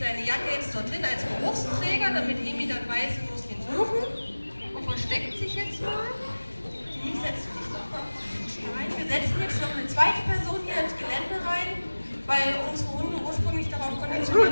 Jacke jetzt dorthin als Geruchsträger, damit Emi dann weiß, sie muss ihn suchen. Und versteckt sich jetzt mal. Die setzt sich noch mal rein. Wir setzen jetzt noch eine zweite Person hier ins Gelände rein, weil unsere Hunde ursprünglich darauf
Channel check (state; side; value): inverted; both; correlation -1.00